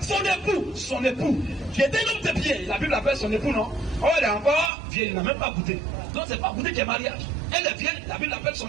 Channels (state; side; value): drops out; left; at 4.7 s